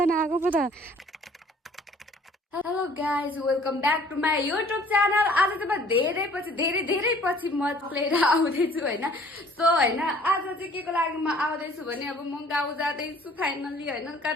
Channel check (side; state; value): both; normal; correlation 0.55